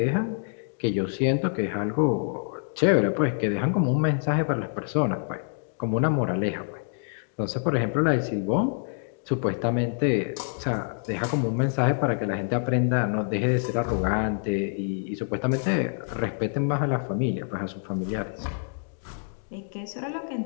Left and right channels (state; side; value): silent; right; digital silence